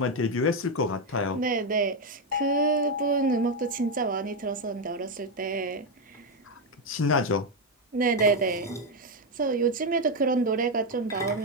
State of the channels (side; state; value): both; normal; correlation 0.06